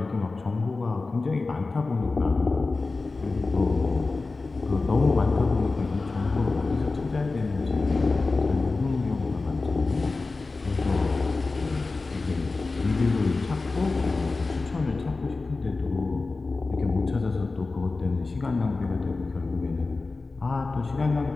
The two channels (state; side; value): quieter; right; 3.7 dB